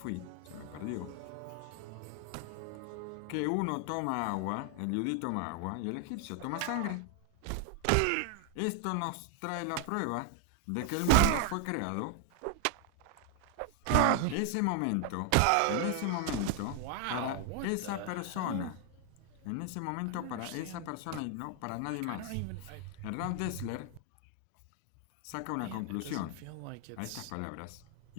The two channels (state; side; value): different; both; correlation 0.00